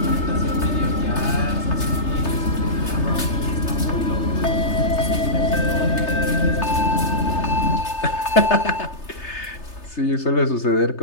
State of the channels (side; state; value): right; late; 3.3 ms